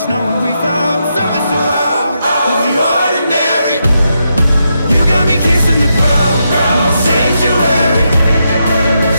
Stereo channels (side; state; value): both; inverted; correlation -0.83